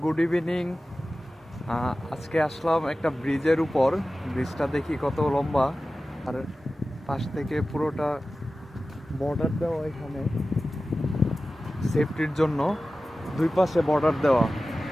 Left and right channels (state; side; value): normal; both; correlation 0.95